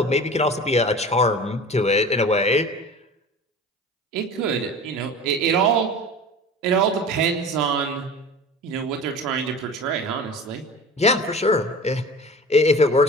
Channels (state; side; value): normal; both; correlation 0.37